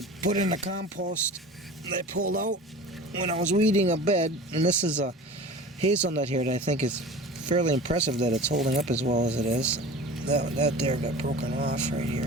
put in the compost that I pulled out when I was weeding a bed. And this is a hazelnut here that I think is fairly impressive that it's holding up as well as it is. That there got broken off right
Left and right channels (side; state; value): both; normal; correlation 0.38